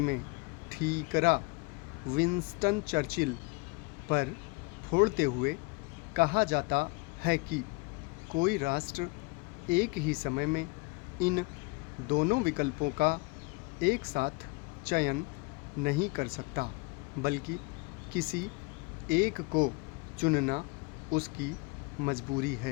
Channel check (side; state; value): right; quieter; 27.9 dB